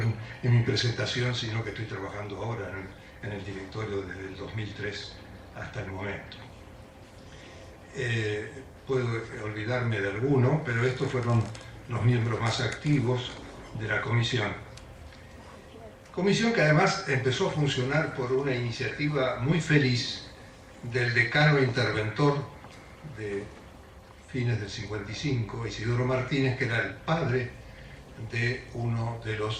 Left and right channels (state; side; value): identical; both; correlation 1.00